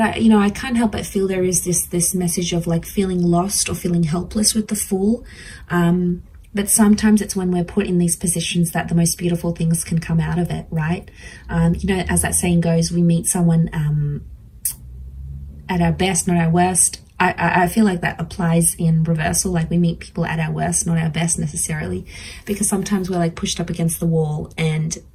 I can't help but feel there is this message of like feeling lost or feeling helpless with the Fool. But sometimes it's when we're put in these positions that the most beautiful things can come out of it, right? As that saying goes, we meet someone at our best, not our worst. I feel like that applies in reversal. Like we meet people at our worst, not our best necessarily, because sometimes we're like pushed up against the wall, and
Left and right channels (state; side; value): identical; both; correlation 1.00